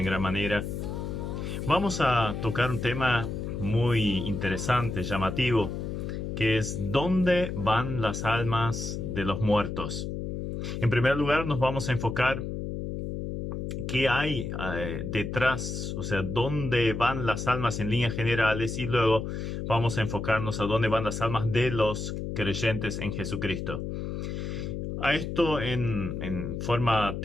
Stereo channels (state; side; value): noise; left; hum, 4 dB below the sound